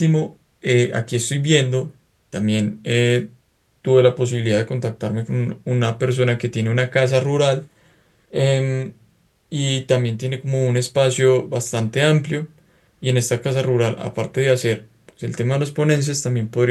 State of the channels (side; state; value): both; identical; correlation 1.00